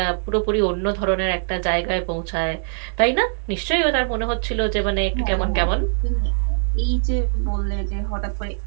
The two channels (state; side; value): silent; left; digital silence